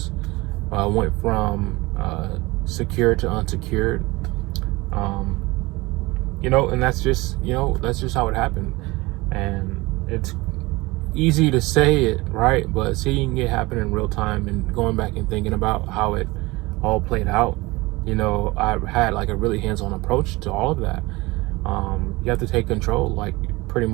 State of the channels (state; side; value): quieter; left; 22.2 dB